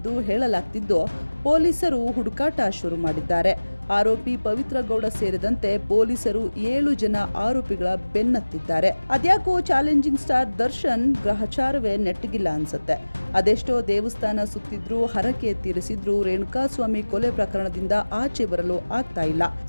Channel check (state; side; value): inverted; both; correlation -1.00